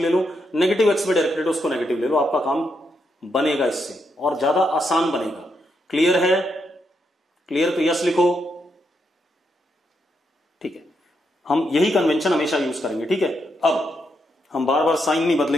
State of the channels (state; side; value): normal; both; correlation 0.80